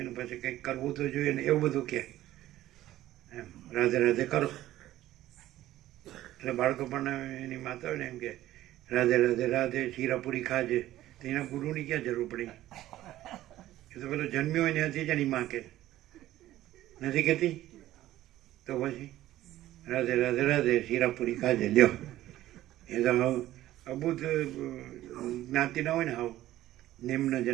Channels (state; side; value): quieter; left; 14.5 dB